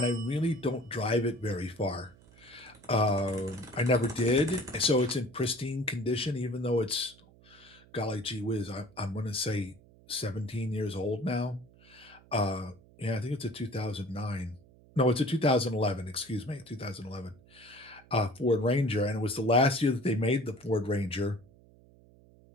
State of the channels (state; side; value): noise; right; hum, 26 dB below the sound